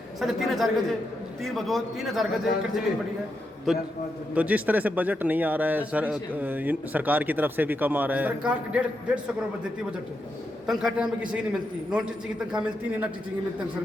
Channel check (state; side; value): normal; both; correlation 0.84